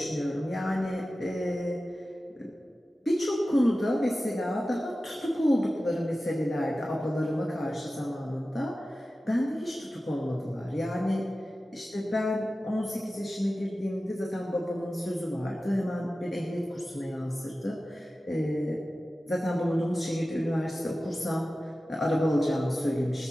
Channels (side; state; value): both; normal; correlation 0.95